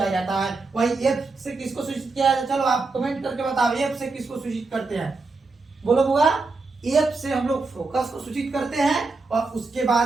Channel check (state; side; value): quieter; left; 3.8 dB